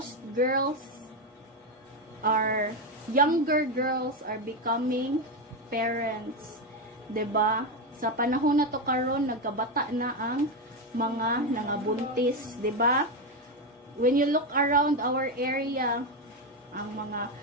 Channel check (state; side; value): normal; both; correlation 0.10